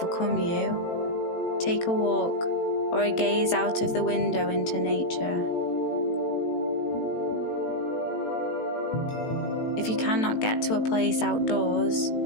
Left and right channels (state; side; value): late; right; 18 ms